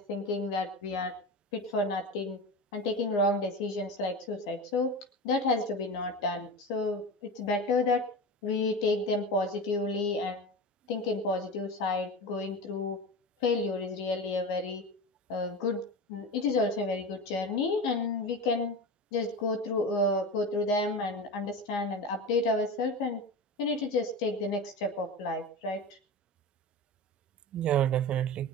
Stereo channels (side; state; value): both; normal; correlation 0.26